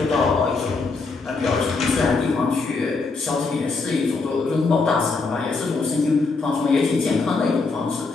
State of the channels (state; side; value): quieter; right; 4.0 dB